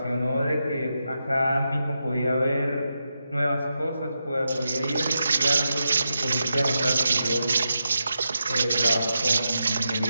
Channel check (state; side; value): inverted; both; correlation -0.87